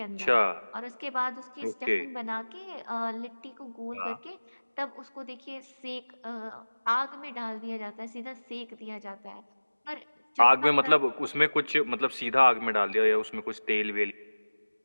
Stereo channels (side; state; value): both; inverted; correlation -1.00